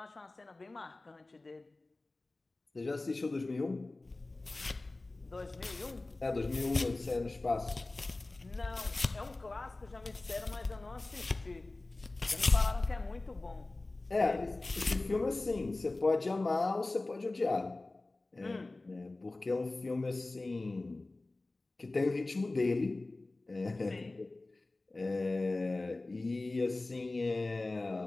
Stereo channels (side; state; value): right; quieter; 3.0 dB